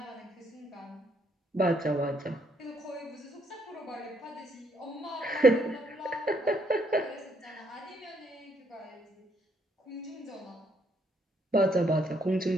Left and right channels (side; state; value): both; normal; correlation 0.71